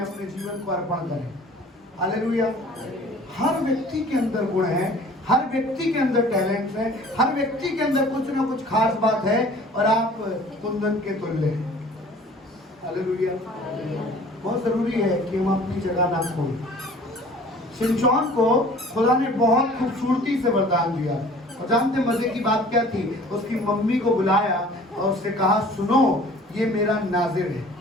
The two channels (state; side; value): normal; both; correlation 0.49